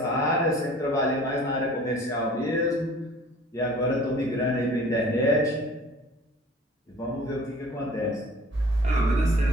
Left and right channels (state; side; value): normal; both; correlation 0.47